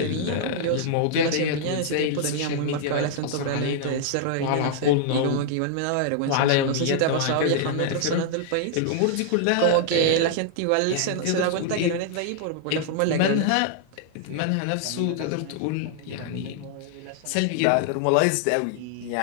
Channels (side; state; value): both; different; correlation 0.00